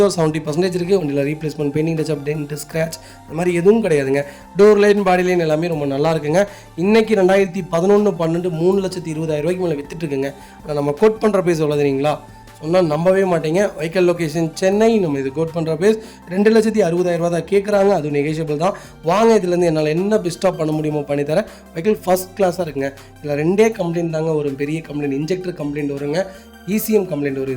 ஒரு 70% இருக்குது. வண்டியில் replacement, painting touch up, dent, scratch அந்த மாதிரி எதுவும் கிடையாதுங்க. டோர் லைன், பாடி லைன் எல்லாமே ரொம்ப நல்லா இருக்குங்க. இன்றைக்கி 2011-12 3,20,000 மேலே வித்துட்டுருக்குங்க. ஆனால் நம்ம கோட் பண்ணுற பேஸ் எவ்வளோ தெரியுங்களா, சொன்னால் நம்பவே மாட்டீங்க. Vehicle location Chennai. நம்ம இது கோட் பண்ணுற பேஸ் 2,60,000 தான் கேட்குறாங்க. அது நெகோஷியபிள் தான். வாங்க, இதுலேருந்து என்னால் என்ன பெஸ்ட்டாக பண்ண முடியுமோ பண்ணித்தரேன். வெஹிக்கல் ஃபஸ்ட் கிளாஸாக இருக்குங்க. இதில் 2 கம்ப்ளைண்ட் தாங்க ஒரு பெரிய கம்ப்ளைண்ட், இன்ஜெக்டர் கம்ப்ளைண்ட் வருங்க, ECM கம்ப்ளைண்ட் வரும்.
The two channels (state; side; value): identical; both; correlation 1.00